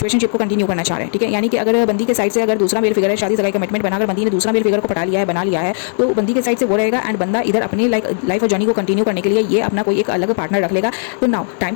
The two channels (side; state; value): right; silent; 61 dB below the other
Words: को कंटिन्यू करना चाह रहे हैं, ठीक है। यानी कि अगर बंदी के साइड से अगर दूसरा मेल फिगर है, शादी सगाई कमिटमेंट बनाकर बंदी ने दूसरा मेल फिगर को पटा लिया है, बना लिया है, तो बंदी के साइड से वो रहेगा एंड बंदा इधर अपनी लाइफ और जर्नी को कंटिन्यू करने के लिए ये अपना कोई एक अलग पार्टनर रख लेगा। तो नाउ टाइम